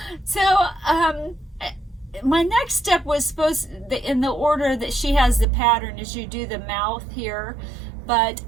So, my next step was supposed, in the order that she has the pattern, is you do the mouth here, but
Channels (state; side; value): drops out; left; at 5.5 s